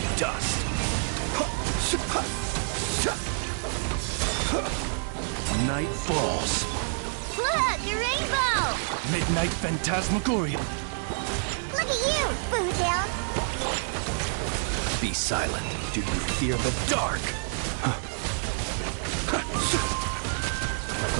dust. Night falls. Look, a rainbow! Midnight phantasmagoria. Look at you, Bootown! Be silent. Do you fear the dark?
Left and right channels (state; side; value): silent; left; digital silence